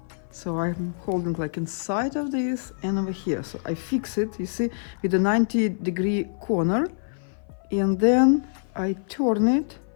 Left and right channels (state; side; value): silent; right; 56 dB below the other